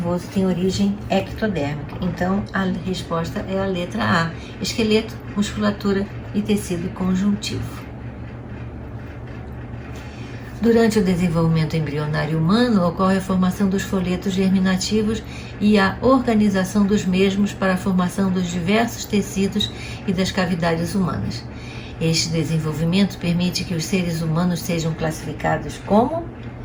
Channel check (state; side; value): identical; both; correlation 1.00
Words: tem origem ectodérmica. Então, a resposta é a letra A. Esqueleto, musculatura e tecido conjuntivo. Durante o desenvolvimento embrionário humano, ocorre a formação dos folhetos germinativos e a organização dos mesmos para a formação dos diversos tecidos e das cavidades humanas. Este desenvolvimento permite que os seres humanos sejam classificados como?